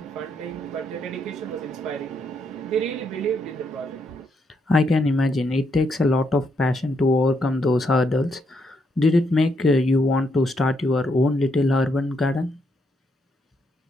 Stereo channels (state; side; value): normal; both; correlation 0.76